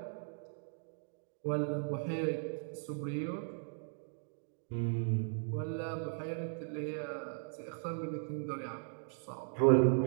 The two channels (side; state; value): left; silent; digital silence